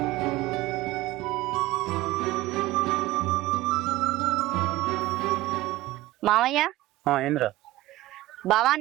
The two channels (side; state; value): left; quieter; 17.6 dB